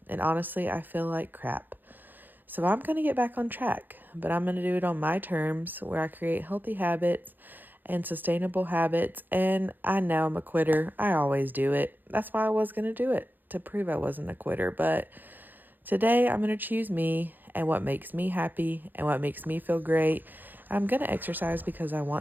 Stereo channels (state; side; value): late; left; 0.089 ms